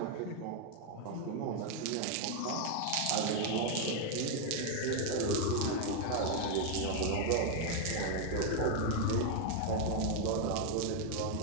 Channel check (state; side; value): different; both; correlation 0.01